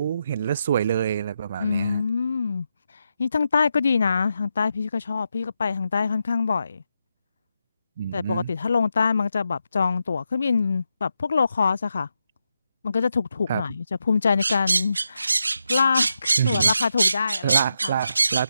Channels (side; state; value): both; inverted; correlation -0.85